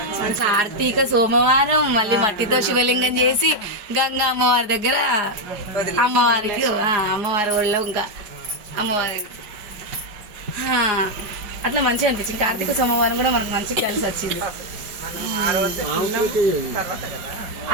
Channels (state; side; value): late; left; 4.8 ms